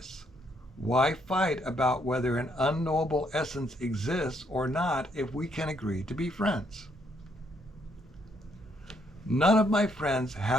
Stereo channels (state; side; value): normal; both; correlation 0.72